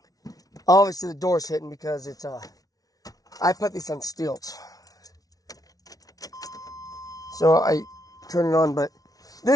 Obviously the door's hitting because it's I put this on stilts. So I turn it on, but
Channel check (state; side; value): late; right; 0.18 ms